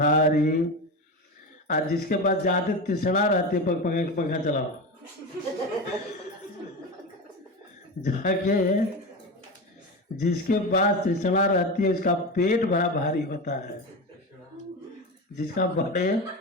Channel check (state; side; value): normal; both; correlation 0.22